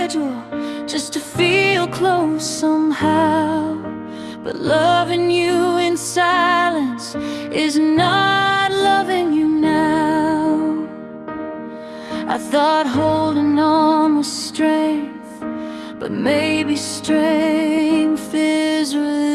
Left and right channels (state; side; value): identical; both; correlation 1.00